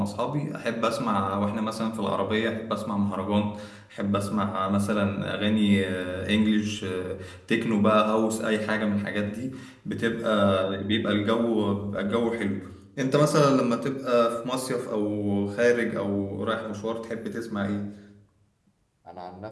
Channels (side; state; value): both; identical; correlation 1.00